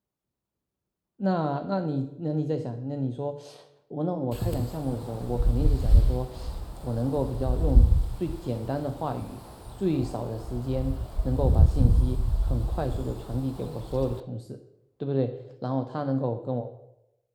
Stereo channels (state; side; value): identical; both; correlation 1.00